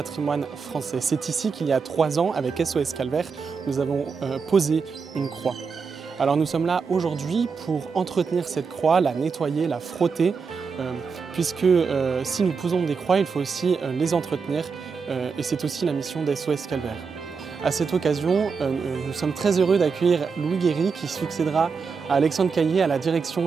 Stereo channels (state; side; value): quieter; left; 5.3 dB